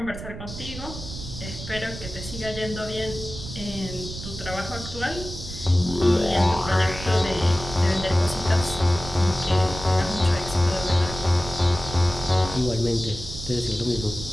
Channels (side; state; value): right; noise; rumble, 10 dB below the sound